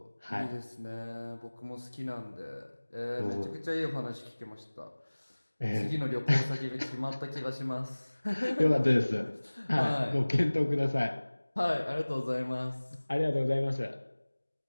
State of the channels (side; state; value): both; inverted; correlation -1.00